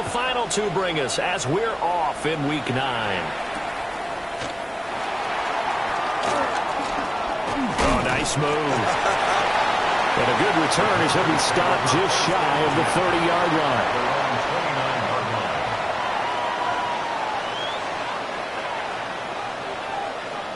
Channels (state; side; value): identical; both; correlation 1.00